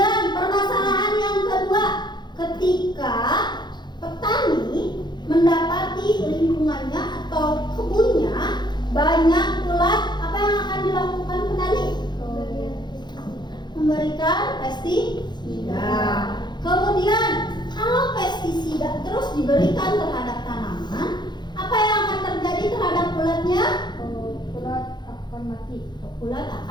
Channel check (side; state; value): right; late; 0.21 ms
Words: permasalahan yang kedua, ketika petani mendapati lingkungannya atau kebunnya banyak ulat, apa yang akan dilakukan petani? Memberikan pestisida. Kemudian kalau pestisida terus diberikan terhadap tanaman, apa yang akan terjadi terhadap ulatnya? Ulat akan mati. Ulat